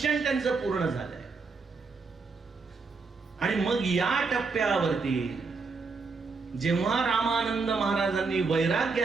त्यांचं पूर्ण झालंय. आणि मग या टप्प्यावरती जेव्हा रामानंद महाराजांनी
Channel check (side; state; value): left; quieter; 4.5 dB